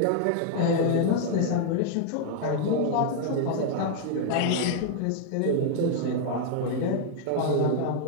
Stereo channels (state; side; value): different; both; correlation 0.00